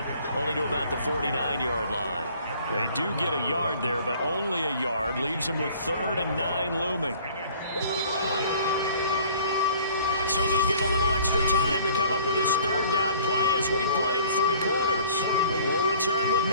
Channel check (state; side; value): inverted; both; correlation -0.52